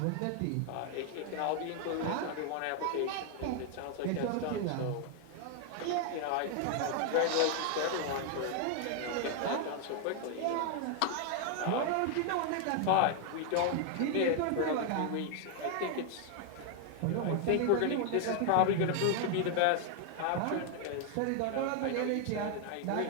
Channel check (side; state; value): both; different; correlation 0.00